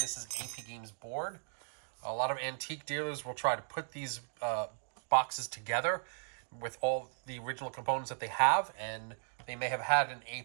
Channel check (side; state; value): left; silent; digital silence